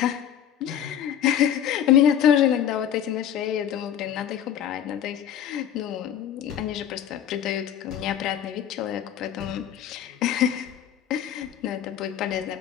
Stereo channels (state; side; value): quieter; right; 9.8 dB